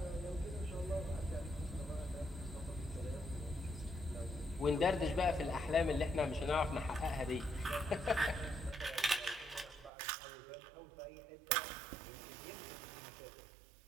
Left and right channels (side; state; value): left; drops out; at 9.9 s